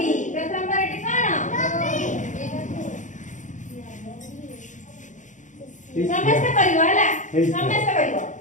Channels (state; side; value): late; right; 0.36 ms